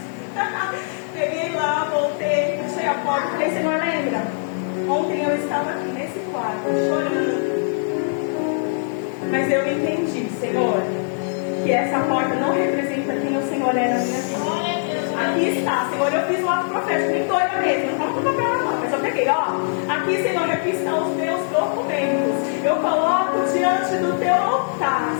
Peguei lá, voltei, fechei a porta, falei, Senhor, lembra? Ontem eu estava aqui nesse quarto, chorando. Mas eu entendi, Senhor, que essa porta não representa quem o Senhor é na minha vida. Aqui está, Senhor, eu fiz um ato profético, nem doida mesmo, não estava com papel na mão, mas eu peguei, ó. Aqui, Senhor, aqui estão os meus documentos. Eu coloco diante do teu altar,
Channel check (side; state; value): right; silent; 64 dB below the other